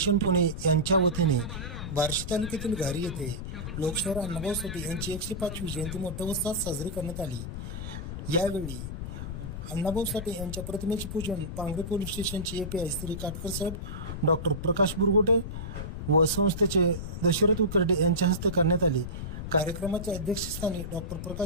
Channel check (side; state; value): left; noise; rumble, 6 dB below the sound